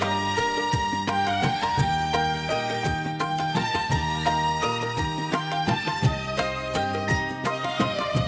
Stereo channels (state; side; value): identical; both; correlation 1.00